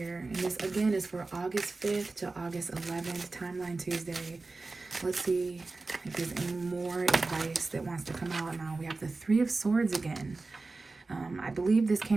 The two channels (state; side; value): quieter; left; 3.6 dB